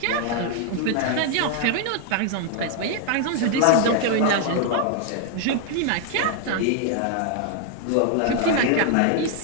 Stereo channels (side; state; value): both; different; correlation 0.00